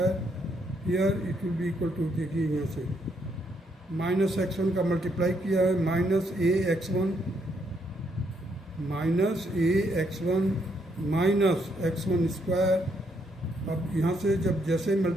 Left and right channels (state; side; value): normal; both; correlation 0.74